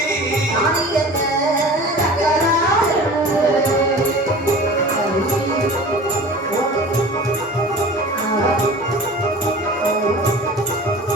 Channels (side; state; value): both; normal; correlation 0.39